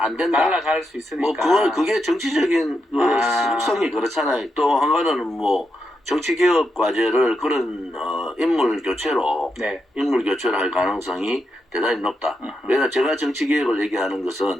된다. 날아갈 수 있으니까. 뭐, 그게 정치적인 속성이 그렇잖아요. 또 한 가지는 뭐, 정치개혁 과제를 그런, 인물 교체로 할 가능성이 대단히 높다. 왜냐면 제가 정치개혁을 얘기하는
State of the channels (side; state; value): both; normal; correlation 0.84